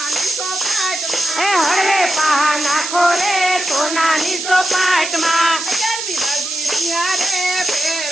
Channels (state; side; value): noise; right; hiss, 5 dB below the sound